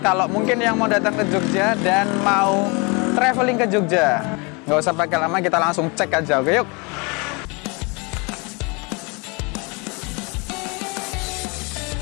kalau mungkin yang mau datang ke Jogja dan mau traveling ke Jogja. Nggak usah pakai lama, kita langsung cek aja, oke yuk.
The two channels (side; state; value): right; quieter; 30.0 dB